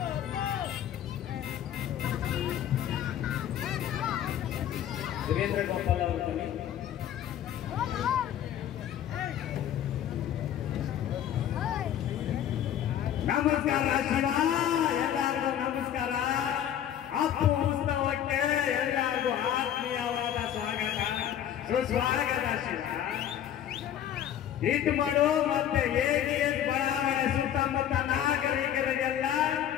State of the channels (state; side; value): quieter; right; 10.5 dB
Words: ವೀರೇಂದ್ರ ಗೋಪಾಲ್ ಅವರು ಬನ್ನಿ. ನಮಸ್ಕಾರ ಶಿವ, ಎಲ್ಲರಿಗೂ ನಮಸ್ಕಾರ. ಅಪ್ಪು ಉತ್ಸವಕ್ಕೆ ಎಲ್ಲರಿಗೂ ಆತ್ಮೀಯವಾದ ಸ್ವಾಗತ ಸುಸ್ವಾಗತ ಶಿವ. ಹಿಟ್ ಮಾಡು ಮತ್ತೆ AGS ಬಡಾವಣೆ ಸುತ್ತಮುತ್ತ ನಾಗರಿಕರಿಗೆಲ್ಲ